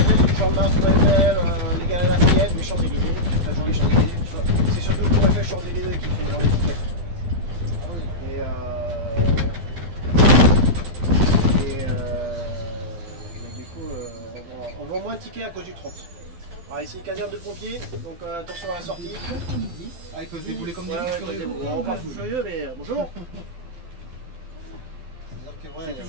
tu chantes Mars, Tour Eiffel, les gars à Lafayette, les Champs-Élysées, enfin je dis les Champs-Élysées, c'est surtout Tour Eiffel, Champs-Élysées qui fait vendre les tickets. Ah oui. Mais du coup, on vend moins de tickets à cause du 30. Alors ici, caserne de pompiers, donc attention à la sortie. Avec se débouler comme des Ouais, fous furieux. on part fou furieux, mais bonjour. C'est-à-dire que Vous ouais,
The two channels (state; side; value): late; left; 12 ms